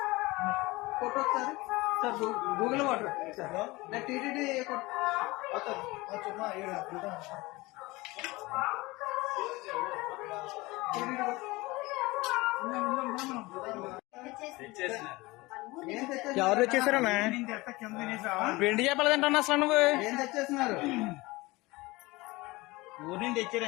ఫోటో ఒకసారి సార్ గూగుల్ వాటర్ సార్ నేను టీటీడీ ఎవరు తెచ్చేసారన్నా? వెండి చేపలు తింటాను అసలు నువ్వు ఏం తెచ్చేస్తున్నారు? ఊరి నుంచి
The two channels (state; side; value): quieter; right; 21.8 dB